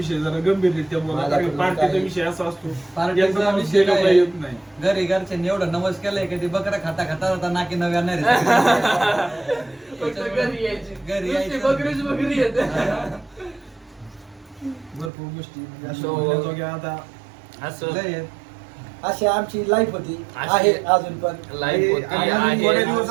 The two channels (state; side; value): drops out; left; at 15.1 s